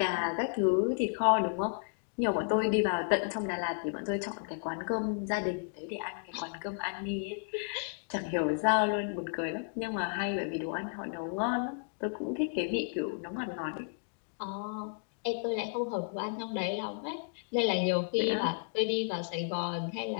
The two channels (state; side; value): silent; right; digital silence